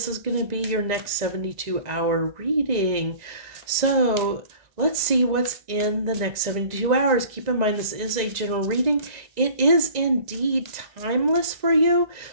is going to be your next 72-hour reading. So let's see what's in the next 72 hours. Keep in mind, this is a general reading. It is indeed timeless for you.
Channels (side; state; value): left; late; 1.9 ms